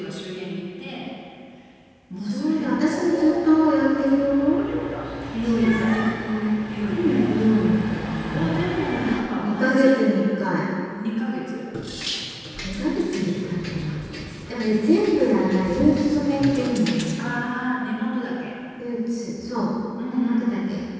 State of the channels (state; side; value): identical; both; correlation 1.00